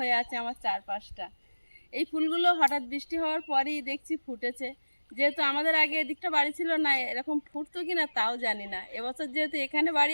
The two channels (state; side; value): inverted; both; correlation -1.00